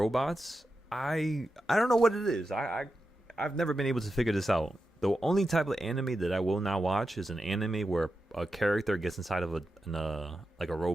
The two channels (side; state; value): both; normal; correlation 0.90